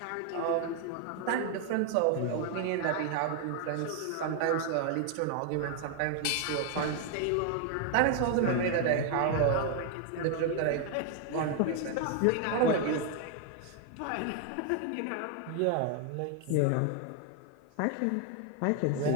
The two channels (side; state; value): both; different; correlation 0.00